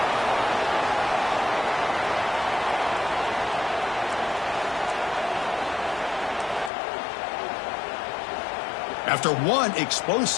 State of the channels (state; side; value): drops out; right; at 6.7 s